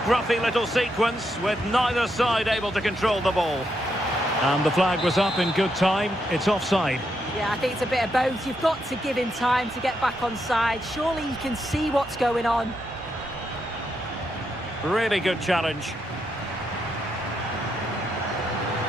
little sequence with neither side able to control the ball. And the flag was up in good time. It's offside. Yeah, I think it's a bit of both. You've got to give him time to get back on side. Surely he can see what's going on. Really good challenge.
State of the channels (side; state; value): both; normal; correlation 0.80